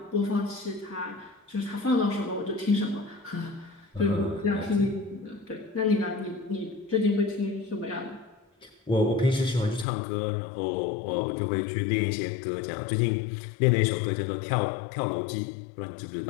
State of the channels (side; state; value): right; drops out; at 9.9 s